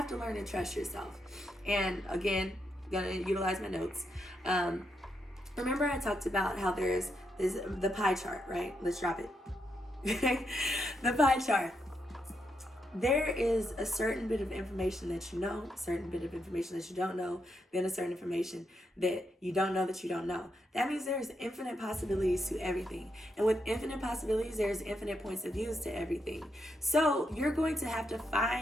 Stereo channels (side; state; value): both; normal; correlation 0.81